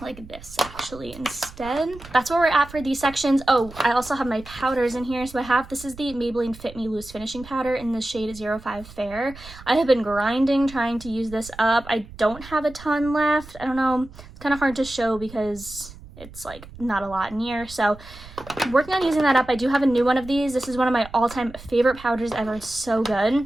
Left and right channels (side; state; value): right; noise; rumble, 18 dB below the sound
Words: like this actually instead. That's where we're at for these sections. Oh, I also have my powders in here. So I have, this is the Maybelline Fit Me Loose Finishing Powder in the shade 05 Fair. I have been grinding trying to use this up. I don't have a ton left. I don't know, it's kind of hard to show because it's like not a lot in here, so I'm working on using that up. I do have a new one of these. This is one of my all-time favorite powders ever. It's so